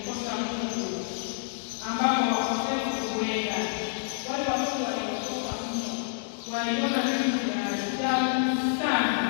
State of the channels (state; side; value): silent; right; digital silence